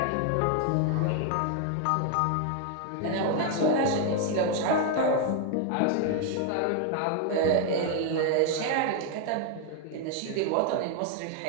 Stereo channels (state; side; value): different; both; correlation 0.00